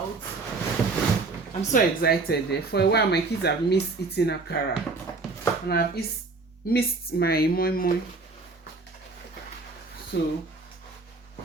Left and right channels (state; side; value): quieter; left; 3.8 dB